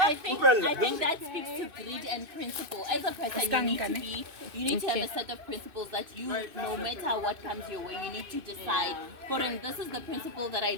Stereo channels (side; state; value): left; late; 2.6 ms